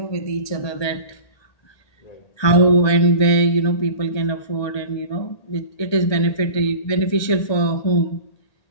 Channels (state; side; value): late; right; 1.8 ms